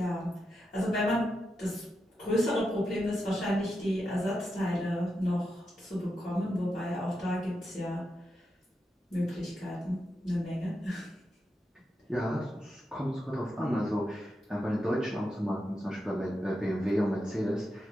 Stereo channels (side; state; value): both; normal; correlation 0.87